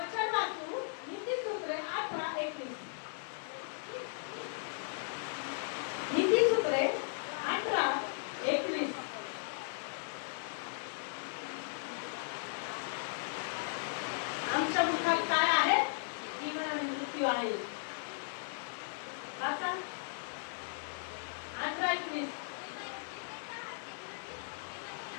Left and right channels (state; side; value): silent; right; digital silence